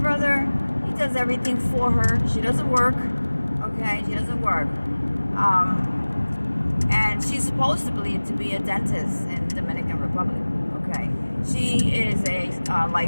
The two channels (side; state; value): both; inverted; correlation -1.00